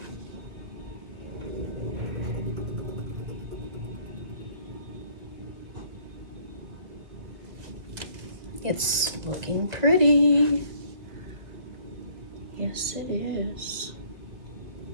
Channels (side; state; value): left; late; 2.1 ms